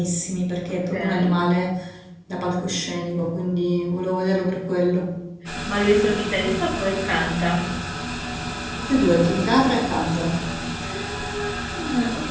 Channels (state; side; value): identical; both; correlation 1.00